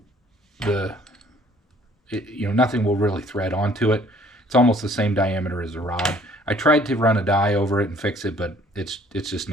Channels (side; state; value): both; normal; correlation 0.58